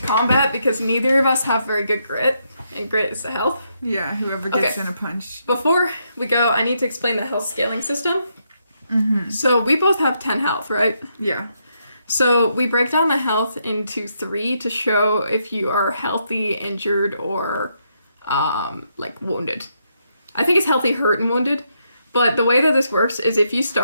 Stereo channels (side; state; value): both; inverted; correlation -0.78